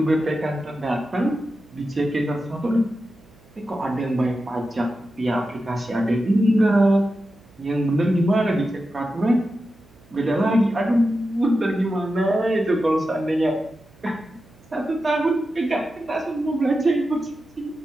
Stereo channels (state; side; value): noise; right; hum, 27 dB below the sound